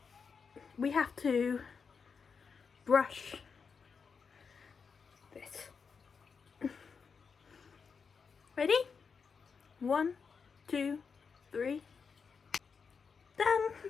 we have to brush this. Ready? 1, 2, 3. Done.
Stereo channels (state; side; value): quieter; right; 5.7 dB